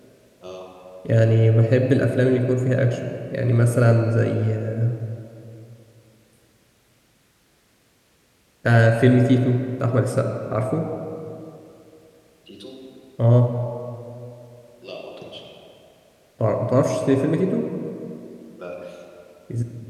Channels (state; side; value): identical; both; correlation 1.00